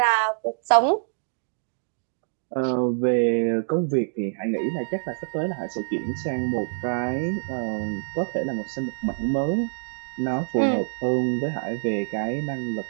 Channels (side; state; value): left; silent; digital silence